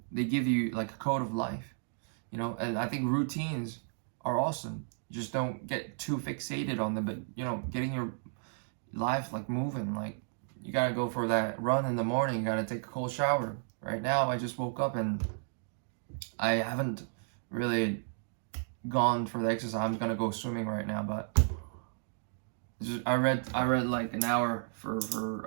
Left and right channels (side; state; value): left; silent; digital silence